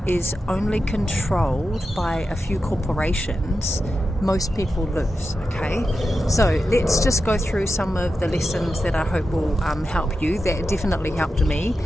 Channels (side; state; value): both; normal; correlation 0.90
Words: is only controlled by a few corporations, most people lose. Okay, so let's just go through some of the lessons that I hope will help you. That definitely helped me.